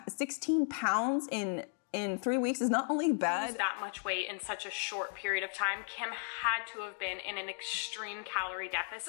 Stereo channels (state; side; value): silent; right; 54 dB below the other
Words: pounds in 3 weeks is not only bad. That much weight in such a short period of time. Kim had to have been in an extreme calorie